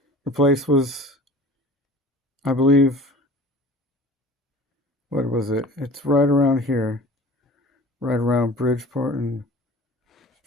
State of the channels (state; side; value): normal; both; correlation 0.43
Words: The place was, I believe, what was it? It's right around here, right around Bridgeport and